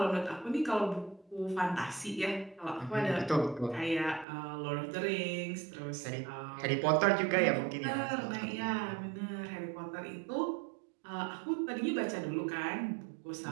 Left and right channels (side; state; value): left; drops out; at 4.2 s